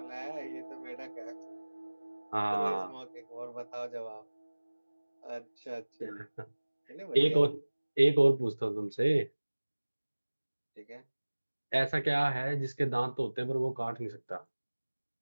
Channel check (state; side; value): inverted; both; correlation -1.00